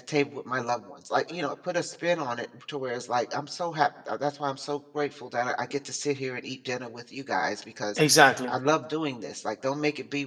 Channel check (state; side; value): identical; both; correlation 1.00